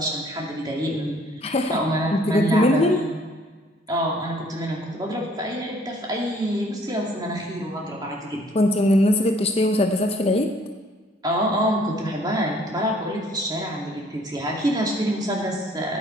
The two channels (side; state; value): both; normal; correlation 0.60